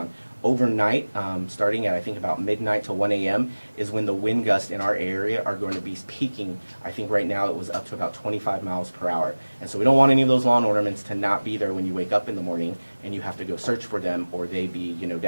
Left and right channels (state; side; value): inverted; both; correlation -1.00